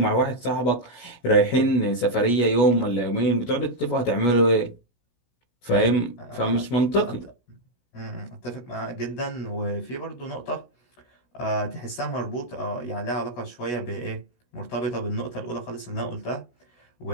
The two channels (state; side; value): late; right; 16 ms